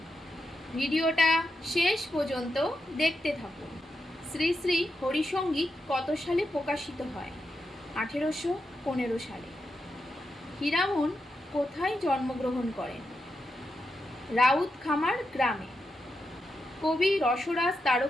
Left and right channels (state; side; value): normal; both; correlation 0.86